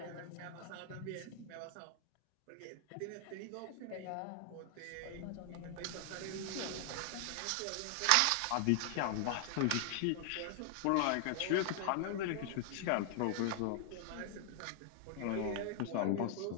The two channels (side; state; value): both; different; correlation 0.00